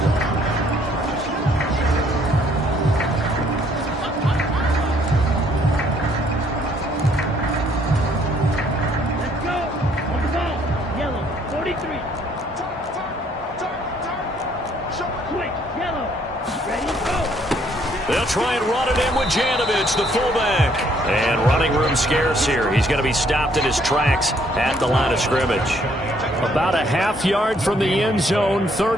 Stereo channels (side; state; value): both; normal; correlation 0.65